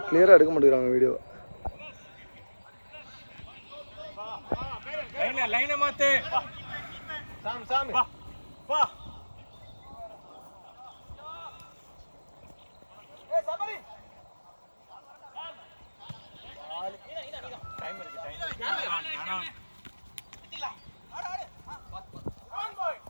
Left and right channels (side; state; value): both; inverted; correlation -1.00